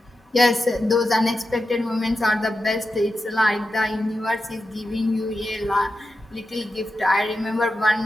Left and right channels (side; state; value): both; normal; correlation 0.90